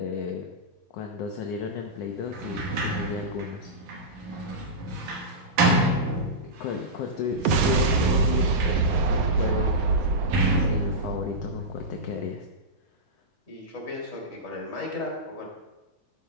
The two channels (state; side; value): normal; both; correlation -0.13